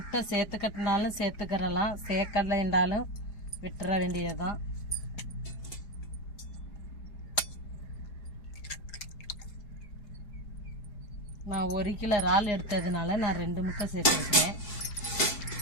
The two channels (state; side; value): late; right; 4.8 ms